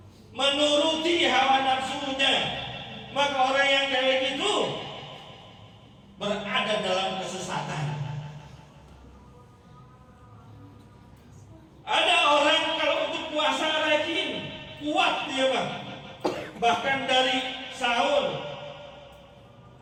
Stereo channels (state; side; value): identical; both; correlation 1.00